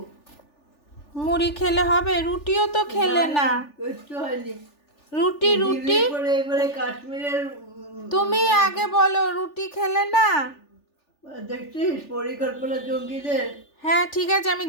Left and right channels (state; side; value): late; right; 3.4 ms